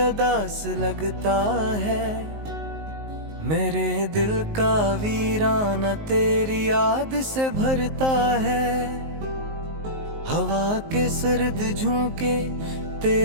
लगता है, मेरे दिल का वीराना तेरी याद से भरता है। हवा के सर्द झोंके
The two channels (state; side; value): late; left; 19 ms